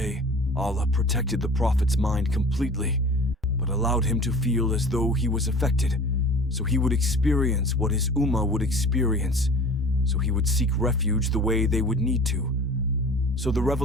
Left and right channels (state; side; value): normal; both; correlation 0.42